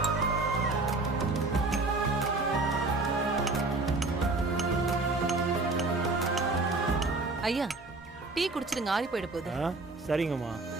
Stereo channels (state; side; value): quieter; left; 3.3 dB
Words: ஐயா டீ குடிச்சிடுங்க, ஆறி போயிட போகுது. சரிங்கம்மா.